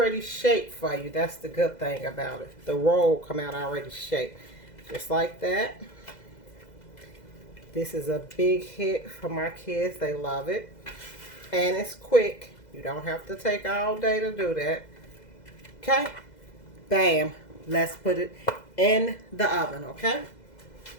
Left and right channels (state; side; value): late; right; 2.0 ms